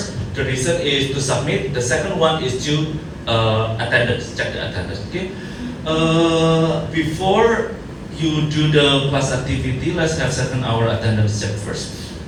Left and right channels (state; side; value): identical; both; correlation 1.00